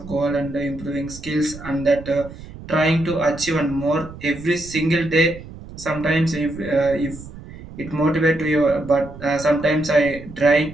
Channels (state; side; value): noise; right; rumble, 15 dB below the sound